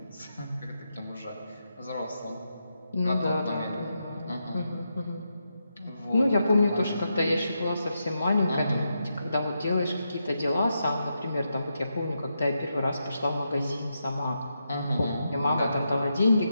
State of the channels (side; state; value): both; inverted; correlation -0.85